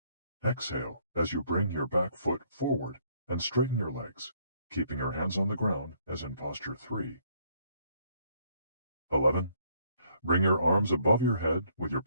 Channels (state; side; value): inverted; both; correlation -0.67